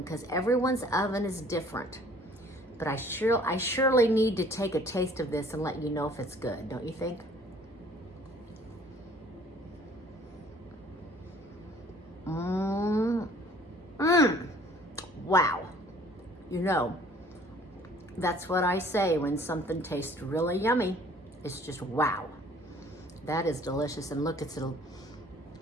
because everyone's oven is different. But I surely need to take a taste of this and let you know if it's good, don't you think? Wow. You know, that's what I say when something tastes really yummy. It's just wow. That is delicious. And look, it's a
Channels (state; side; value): normal; both; correlation 0.55